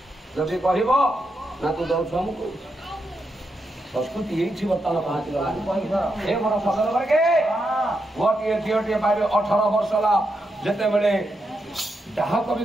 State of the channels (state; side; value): normal; both; correlation 0.84